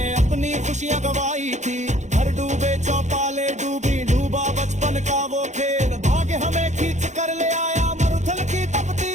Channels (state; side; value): late; left; 0.34 ms